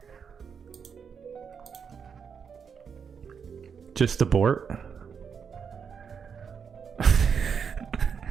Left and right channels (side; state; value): left; quieter; 6.6 dB